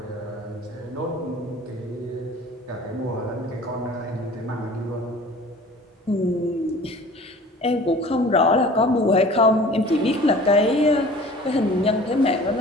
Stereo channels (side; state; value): both; normal; correlation 0.45